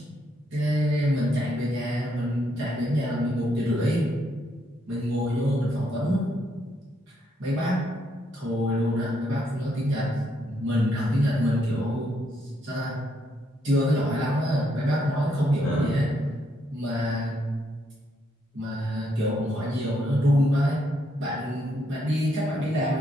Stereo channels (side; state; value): both; normal; correlation 0.75